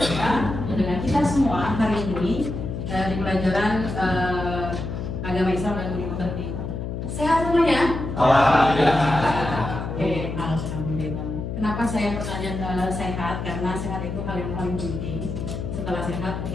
dengan kita semua hari ini di pelajaran agama Islam dan budi pekerti. Sehat semuanya? Alhamdulillah. Oke, alhamdulillah. Kenapa saya bertanya sehat? Karena sehat itu hal yang paling penting. Setelah sehat,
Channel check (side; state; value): left; noise; hum, 5 dB below the sound